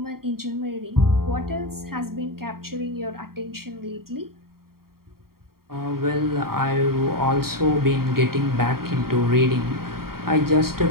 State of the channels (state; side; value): late; left; 0.93 ms